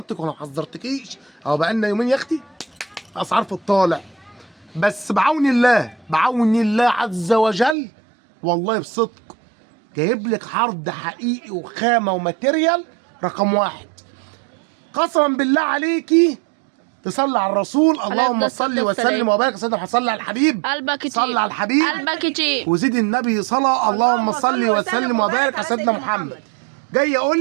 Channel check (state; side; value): drops out; left; at 7.8 s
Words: ولا ما حذرتكيش؟ اهو بقالنا يومين يا اختي اسعار في الطالع. بس بعون الله، بعون الله عز وجل، والله بصدق جايب لك عرض حقيقي وخامه وماتيريال رقم واحد. قسما بالله عليكي تصلي على الرسول، اللهم صل وسلم وبارك. سيدنا صلي على الحبيب، قلبك يطيب، صلي على الحبيب، قلبك يطيب، وزيد النبي صلاه. اللهم صل وسلم وبارك على سيدنا محمد. جاي